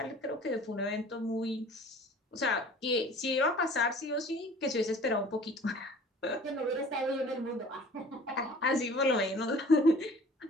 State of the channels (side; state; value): both; normal; correlation 0.48